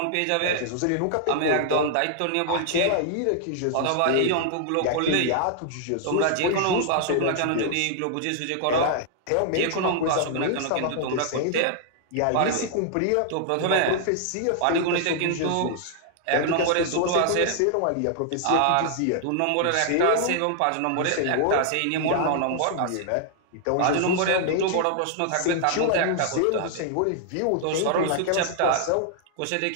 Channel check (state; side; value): different; both; correlation -0.01